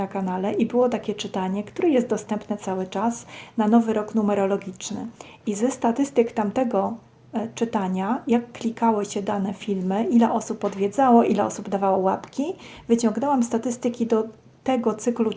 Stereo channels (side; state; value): both; identical; correlation 1.00